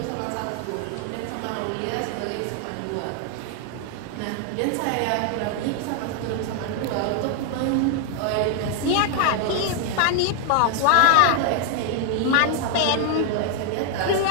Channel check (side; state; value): both; different; correlation 0.00